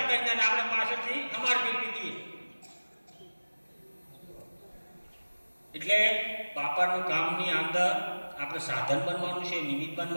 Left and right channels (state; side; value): inverted; both; correlation -1.00